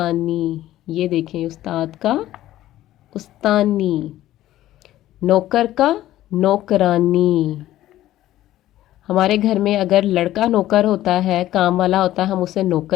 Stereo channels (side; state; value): right; quieter; 14.2 dB